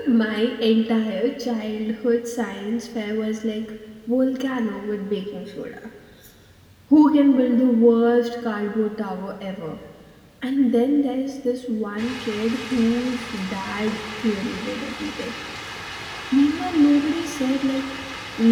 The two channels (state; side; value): identical; both; correlation 1.00